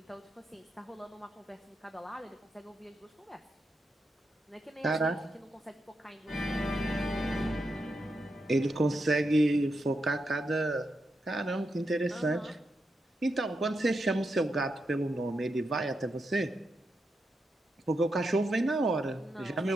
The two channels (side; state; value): both; normal; correlation 0.85